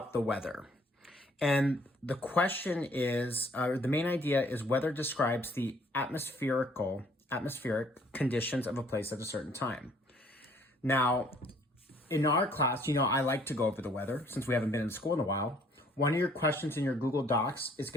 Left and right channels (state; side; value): normal; both; correlation 0.61